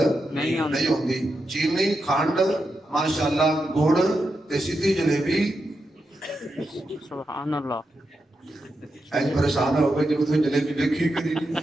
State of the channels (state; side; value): normal; both; correlation 0.87